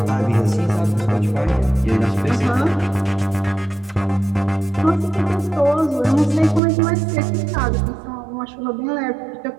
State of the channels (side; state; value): left; drops out; at 6.6 s